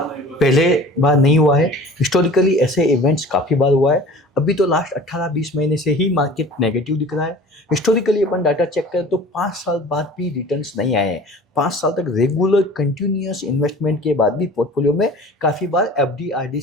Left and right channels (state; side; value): normal; both; correlation 0.43